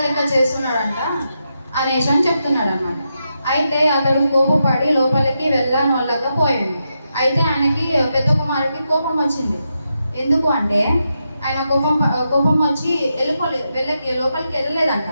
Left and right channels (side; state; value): both; inverted; correlation -0.85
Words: లెక్క చేస్తున్నాడంట అనేసి అని చెప్తున్నాడు అనమాట. అయితే అతడు కోపపడి లోపలికి వెళ్ళకపోయాడు. అయితే ఆయనకి పెద్ద కుమారుడికి కోపం వచ్చింది. ఎందుకు అంటే ఆయన కోపం వచ్చి లోపలికి వెళ్ళలేదంట.